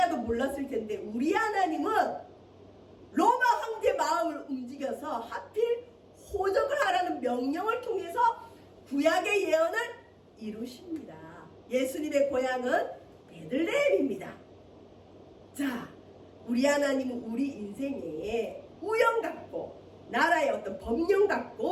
몰랐을 텐데 우리 하나님은 로마 황제 마음을 움직여서 하필 호적을 하라는 명령을 통해서 구약의 예언을 이루십니다. 예수님의 고향은 베들레헴입니다. 자, 우리 하나님은 우리 인생에 우연 같고 나라의 어떤 법령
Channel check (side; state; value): both; identical; correlation 1.00